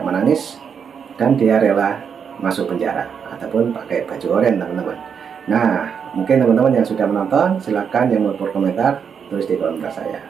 dan dia rela masuk penjara ataupun pakai baju oranye, teman-teman. Nah, mungkin teman-teman yang sudah menonton, silakan yang mau berkomentar tulis di kolom komentar saya.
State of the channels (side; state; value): left; quieter; 7.0 dB